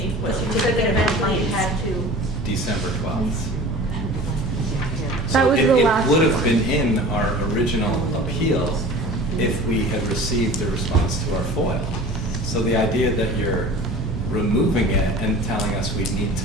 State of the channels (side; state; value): both; normal; correlation 0.41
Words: you The that certificate of eventually you compliance. had to? December 12th? That was the last It would have one. been in our original appeal if we had received the response to our FOIL. So the idea that you're removing it and telling us we need